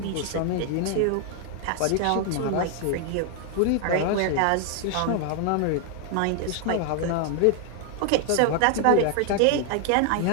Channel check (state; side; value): different; both; correlation 0.00